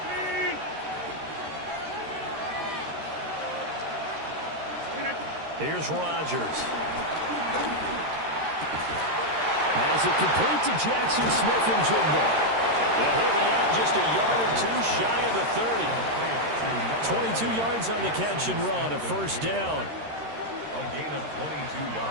Here's Rodgers. Has it complete to Jackson Smith-Njigba. And he'll be out just a yard or 2 shy of the 30. 22 yards on the catch and run, a first down. A gain of 22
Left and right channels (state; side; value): late; left; 13 ms